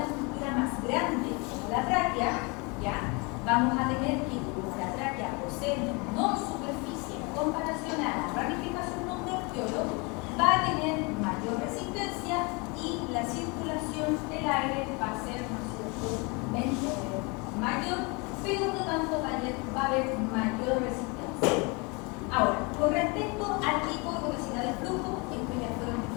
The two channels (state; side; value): quieter; right; 29.3 dB